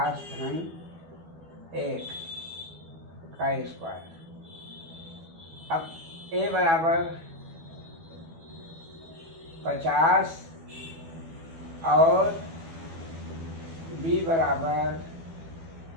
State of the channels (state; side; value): late; left; 12 ms